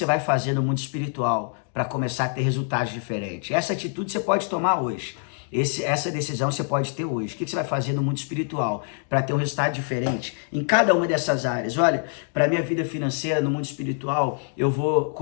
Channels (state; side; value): silent; right; 62 dB below the other